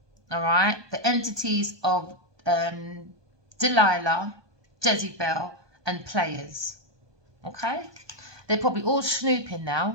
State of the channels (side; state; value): left; late; 1.2 ms